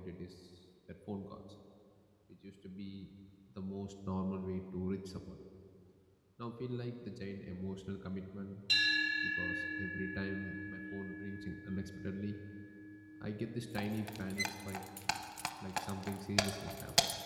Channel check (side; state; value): both; identical; correlation 1.00